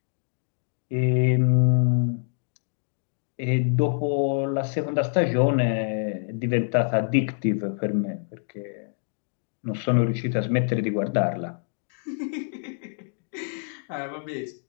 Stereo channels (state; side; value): silent; right; digital silence